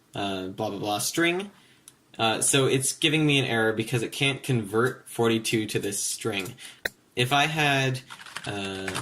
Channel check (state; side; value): identical; both; correlation 1.00